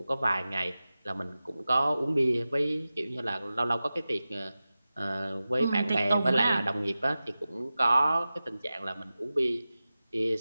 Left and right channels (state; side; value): inverted; both; correlation -0.95